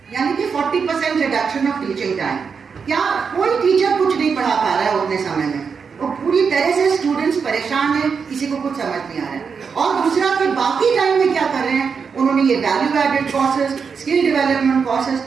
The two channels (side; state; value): left; quieter; 5.9 dB